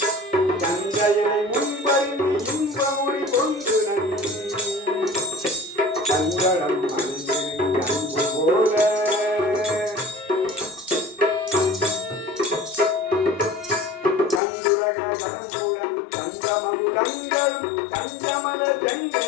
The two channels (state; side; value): drops out; right; at 14.4 s